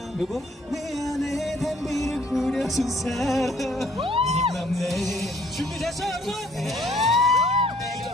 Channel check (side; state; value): both; normal; correlation 0.62